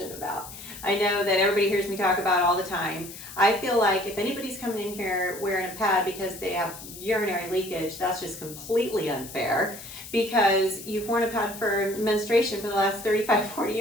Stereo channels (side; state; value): left; noise; hiss, 13 dB below the sound